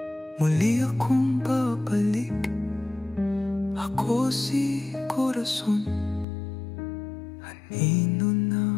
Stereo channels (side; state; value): right; drops out; at 6.2 s